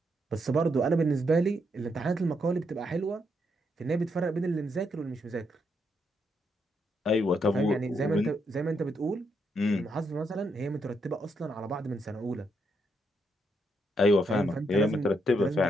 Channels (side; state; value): both; normal; correlation 0.78